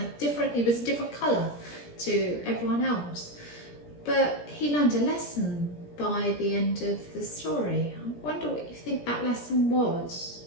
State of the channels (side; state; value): right; late; 17 ms